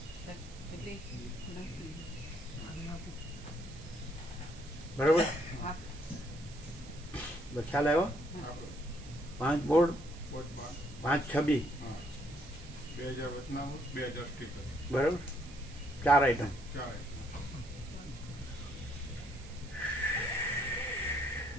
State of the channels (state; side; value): noise; right; hiss, 19 dB below the sound